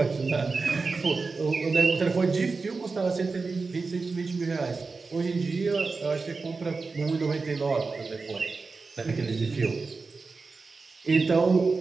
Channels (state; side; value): quieter; left; 4.2 dB